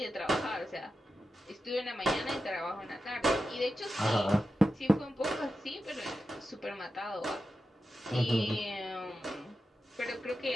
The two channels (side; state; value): both; normal; correlation 0.91